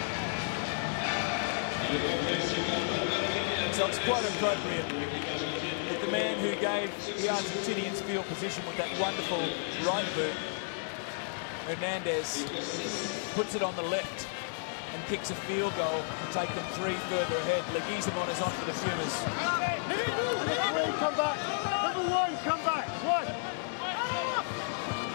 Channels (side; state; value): right; silent; digital silence